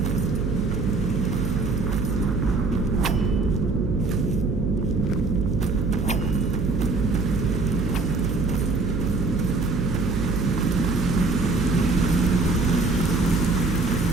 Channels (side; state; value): right; noise; hum, 2 dB below the sound